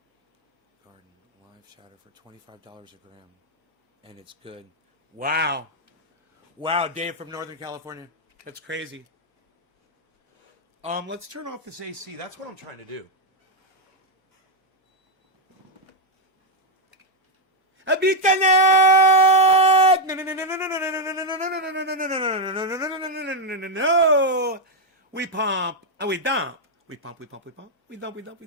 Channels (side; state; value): both; normal; correlation 0.01